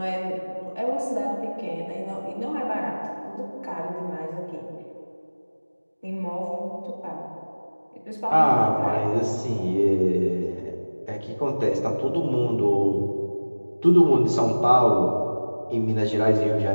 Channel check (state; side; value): inverted; both; correlation -1.00